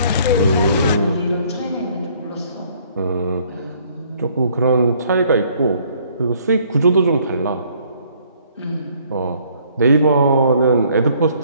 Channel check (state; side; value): inverted; both; correlation -0.62